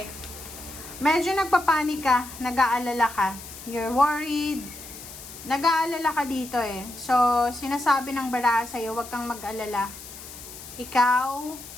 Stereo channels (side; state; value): left; noise; hiss, 14 dB below the sound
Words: Medyo nagpapanik ka, nag-aalala ka. You're worried. Nag-aalala ka dito So, sinasabi ng bara sa'yo, huwag kang mag-alala. Ikaw,